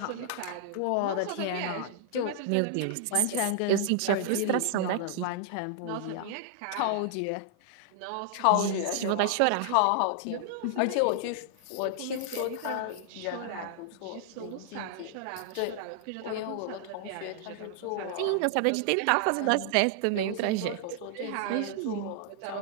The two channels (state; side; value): different; both; correlation -0.01